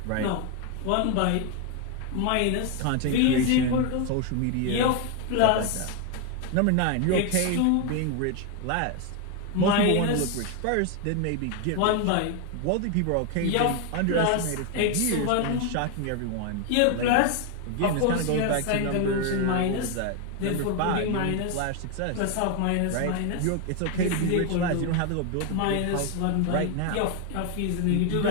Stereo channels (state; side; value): different; both; correlation 0.01